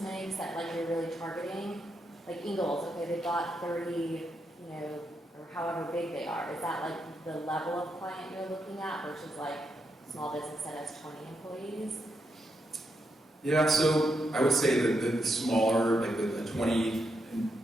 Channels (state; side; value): normal; both; correlation 0.82